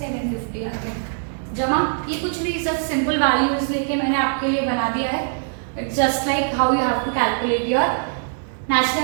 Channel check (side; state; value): left; silent; digital silence